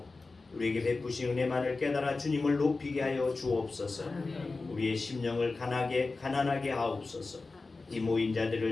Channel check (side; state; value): right; quieter; 3.7 dB